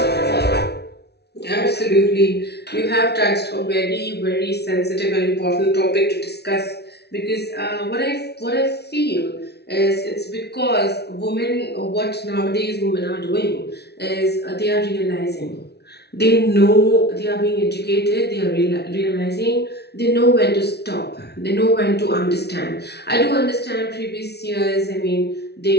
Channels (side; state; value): right; late; 0.49 ms